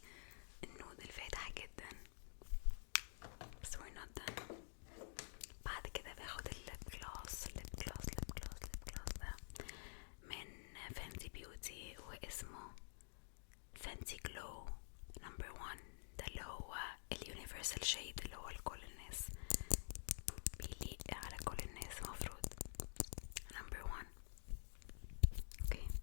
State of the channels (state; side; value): silent; right; digital silence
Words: النود الفاتح جدا. بس we're not done. بعد كده باخد الليب جلوس ده من فانتي بيوتي، واسمه فانتي جلو نمبر 1. ده اللي هو اليونيفرسال شيد اللي هو لكل الناس، بيليق على كل الناس مفروض. نمبر 1. اوكي،